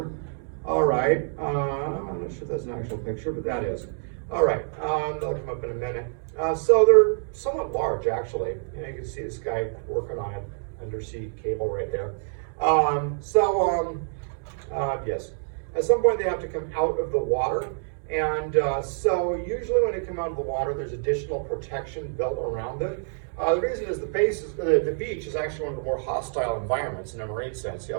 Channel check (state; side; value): silent; left; digital silence